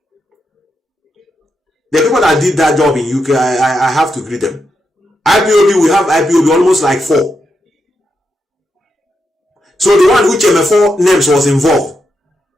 The people that did that job in UK, I have to greet them. IPOB, we have IPOB almost like 4. So the one which MF4 names was involved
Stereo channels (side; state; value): both; normal; correlation 0.84